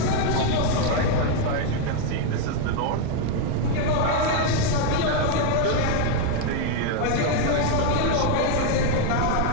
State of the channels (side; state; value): both; different; correlation 0.01